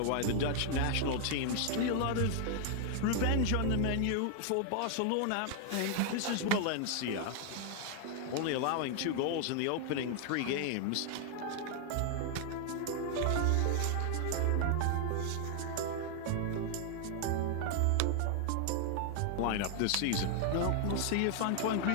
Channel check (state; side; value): different; both; correlation 0.00